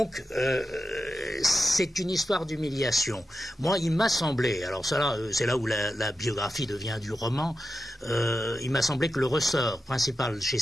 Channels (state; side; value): normal; both; correlation 0.90